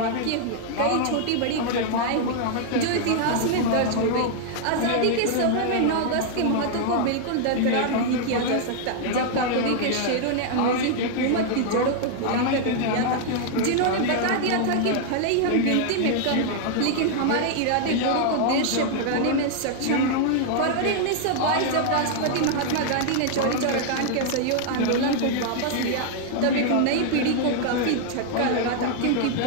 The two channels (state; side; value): different; both; correlation 0.00